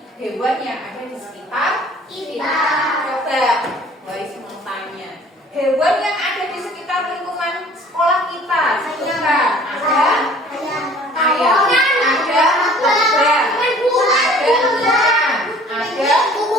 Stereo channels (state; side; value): normal; both; correlation 0.51